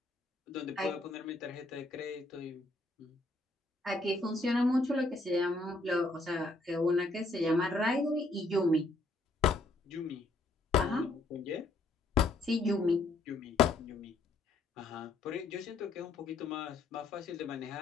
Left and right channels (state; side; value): quieter; right; 3.0 dB